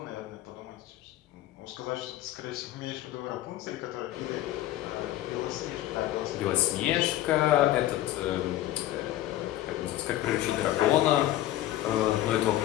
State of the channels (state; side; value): quieter; right; 14.2 dB